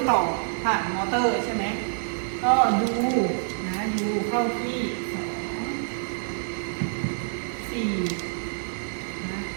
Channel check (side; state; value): left; silent; 60 dB below the other